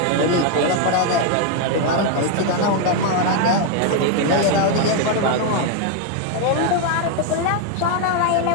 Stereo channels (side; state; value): both; different; correlation 0.01